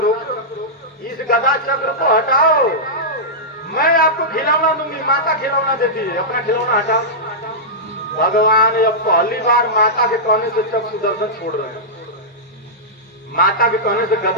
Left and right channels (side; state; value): both; normal; correlation -0.12